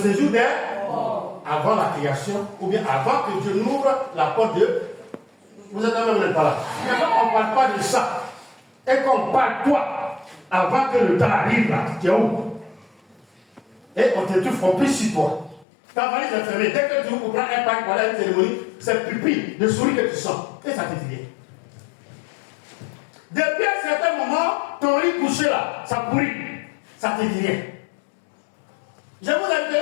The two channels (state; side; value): drops out; right; at 15.7 s